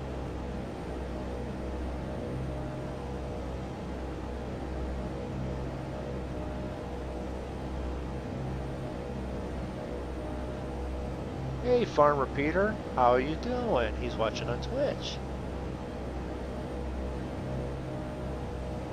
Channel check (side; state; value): both; identical; correlation 1.00